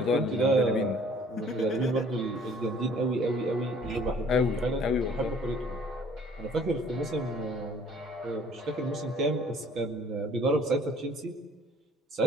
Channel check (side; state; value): both; normal; correlation 0.55